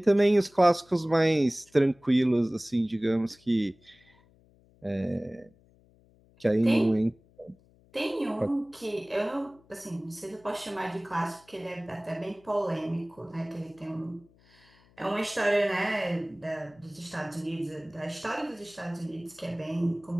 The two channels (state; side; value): noise; left; hum, 30 dB below the sound